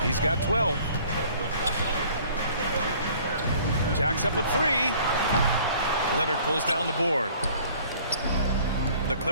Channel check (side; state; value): both; inverted; correlation -0.53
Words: He's got 12. Jacks up a 3. Leonard pulls down the board. The